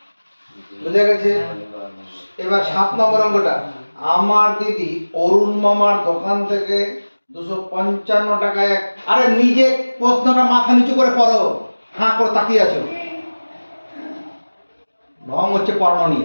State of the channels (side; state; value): both; inverted; correlation -1.00